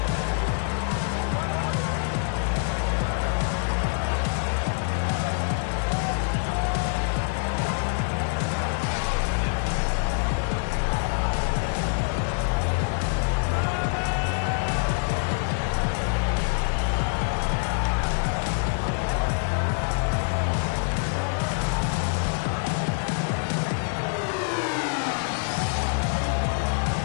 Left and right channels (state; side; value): silent; right; 61 dB below the other